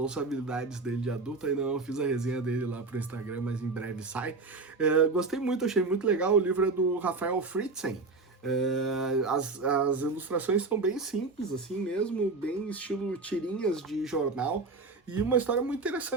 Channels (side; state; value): left; quieter; 3.8 dB